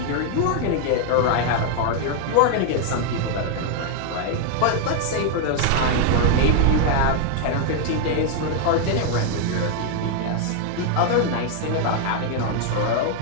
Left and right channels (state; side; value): different; both; correlation 0.00